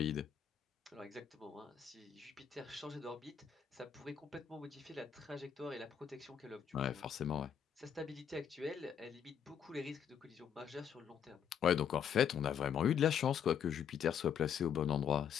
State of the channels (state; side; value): quieter; right; 8.2 dB